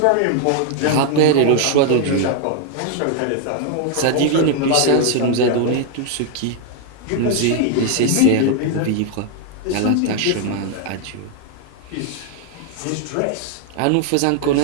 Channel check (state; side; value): different; both; correlation 0.00